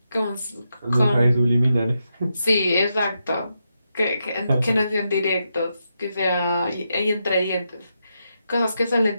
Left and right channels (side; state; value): both; inverted; correlation -0.84